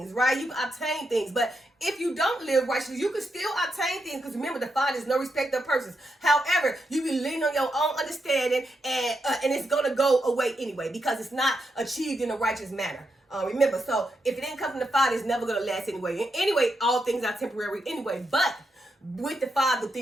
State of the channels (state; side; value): normal; both; correlation 0.83